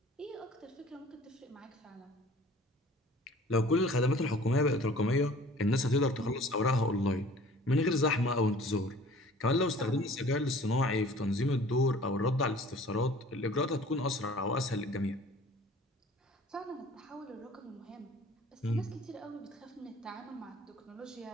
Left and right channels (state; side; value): normal; both; correlation 0.49